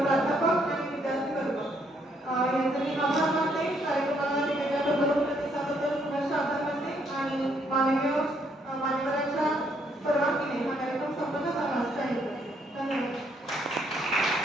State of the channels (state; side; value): normal; both; correlation 0.70